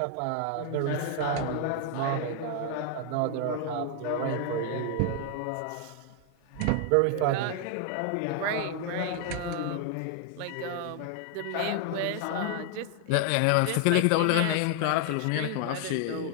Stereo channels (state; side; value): different; both; correlation 0.00